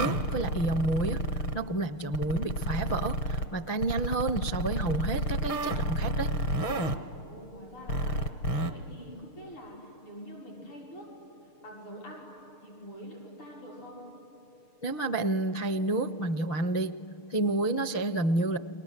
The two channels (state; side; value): late; right; 6.6 ms